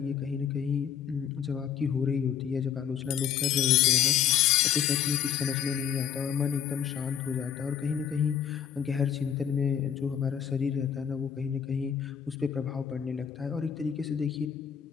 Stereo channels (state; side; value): quieter; right; 8.7 dB